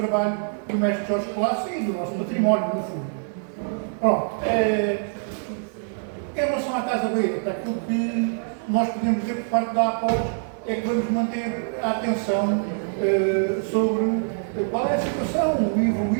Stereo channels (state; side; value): silent; left; 62 dB below the other